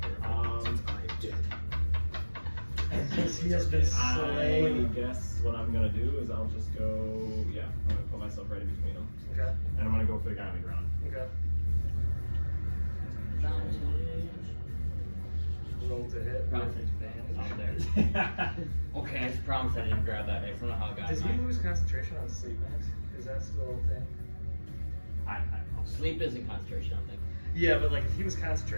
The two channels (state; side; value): inverted; both; correlation -1.00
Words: He has been I slain. guess what I'm gonna do is I'll just go. Yeah, I'm gonna put myself right in between them, Okay. and I'm gonna go for the guy on the ground. Okay. Roll to hit. Promise with advantage. out there. Okay, I just promise I didn't grab that dice. I don't know how I got Does he mine. lose concentration on sleep max? Is that still a thing? I don't know. Sleep isn't concentration, I don't think. Yeah, but like if he was